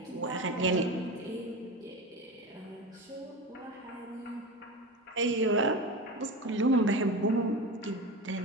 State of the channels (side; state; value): both; normal; correlation 0.25